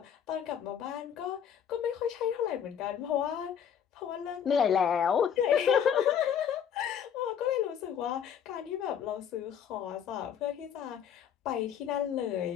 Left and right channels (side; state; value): right; quieter; 8.4 dB